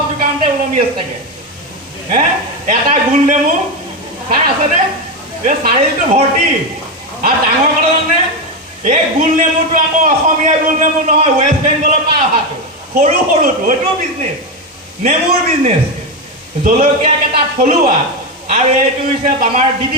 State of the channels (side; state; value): both; normal; correlation 0.11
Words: দোকানতে ওলমি আছে চাগে হে এটা গোল নেমু চাই আছেনে এই চাৰিটো ভৰ্তি আৰু ডাঙৰ কথা জানে এই গোল নেমুটো আকৌ অসমীয়া গোল নেমু নহয় ৱেষ্ট বেংগলৰ পৰা অহাটো সৰু সৰুটো এইটো বিজনেছ নেমুৰ বিজনেছ জলকীয়াকেইটা থলুৱা আৰু এইটো হৈছে আমাৰ